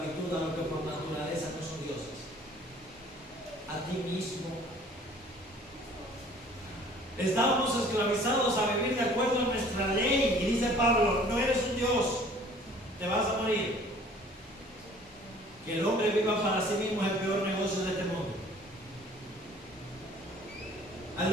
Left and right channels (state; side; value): normal; both; correlation 0.52